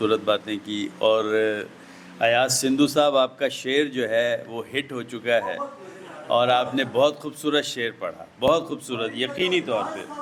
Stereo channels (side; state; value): both; identical; correlation 1.00